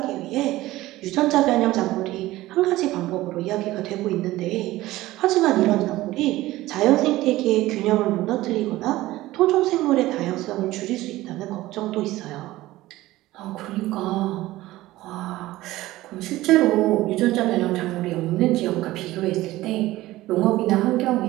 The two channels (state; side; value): quieter; left; 17.1 dB